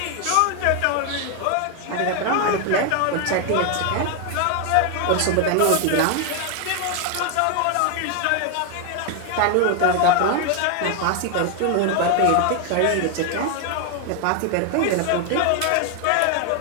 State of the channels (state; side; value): different; both; correlation 0.01